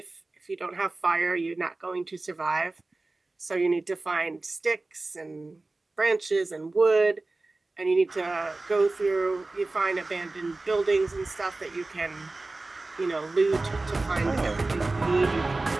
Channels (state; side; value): quieter; left; 3.2 dB